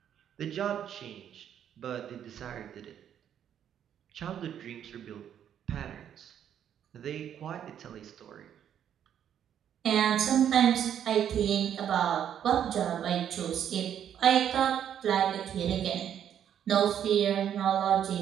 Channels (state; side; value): quieter; left; 9.6 dB